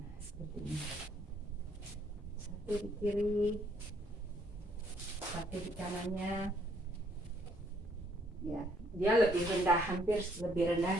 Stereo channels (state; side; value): normal; both; correlation 0.68